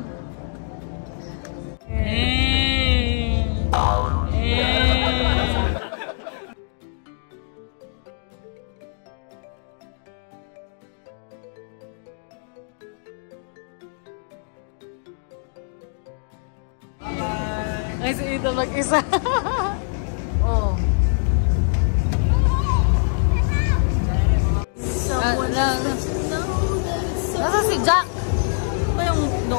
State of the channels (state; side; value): silent; right; 63 dB below the other